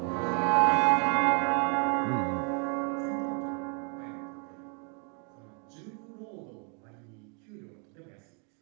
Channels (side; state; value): left; quieter; 38.1 dB